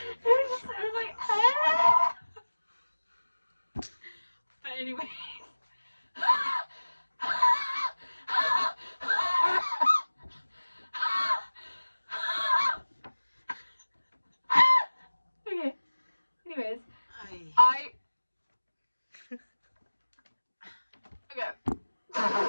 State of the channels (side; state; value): both; inverted; correlation -1.00